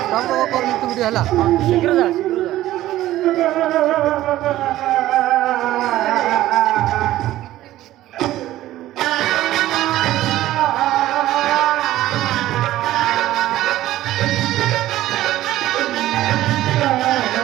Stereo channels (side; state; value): left; quieter; 14.8 dB